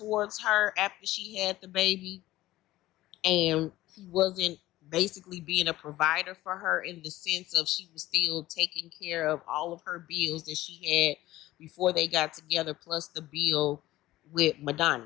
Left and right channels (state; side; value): quieter; right; 16.3 dB